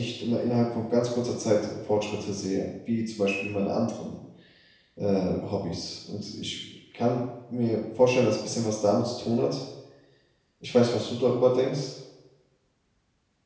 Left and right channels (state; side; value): identical; both; correlation 1.00